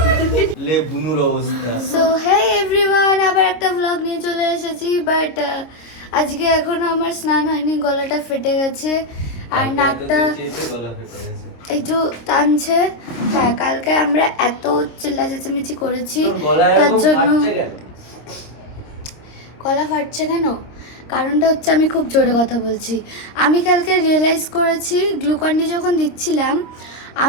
লে বুনুর অবস্থা। সো হে এভরিওয়ান, আবার একটা ব্লগ নিয়ে চলে এসেছি। বাট আজকে এখনো আমার স্নান হয়নি, গলাটা ফেটে গেছে আর নাকটা একটু টানছে। হ্যাঁ, কালকে আমরা এত চিল্লা চেঁচামেচি করেছি তার জন্য গলা ফাটছে কেন? কারণটা হচ্ছে আমি খুব জোরে কথা বলছি। আমি কালকে রিয়েলাইজ করেছি গ্লুকন্ডি যখন দিচ্ছিলাম,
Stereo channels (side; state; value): right; late; 26 ms